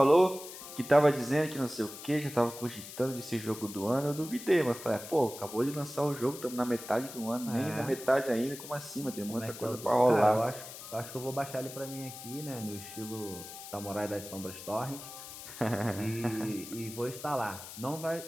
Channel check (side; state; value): left; noise; hiss, 12 dB below the sound